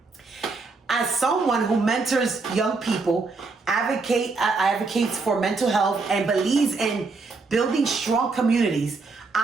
As someone who mentors young people, advocates for mental health, and believes in building strong communities,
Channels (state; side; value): quieter; left; 4.0 dB